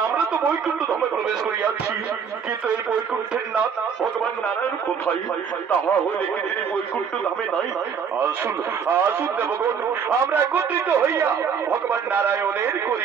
আমরা তো বৈকুণ্ঠ ধামে প্রবেশ করিয়াছি, কিন্তু এই বৈকুণ্ঠের নাথ ভগবান নারায়ণ কোথায়? তাহা হইলে কি তিনি বৈকুণ্ঠ ধামে নাই? আসুন আসুন দেবগণ, আমরা একত্রিত হইয়া ভগবান নারায়ণের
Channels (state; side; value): quieter; left; 6.8 dB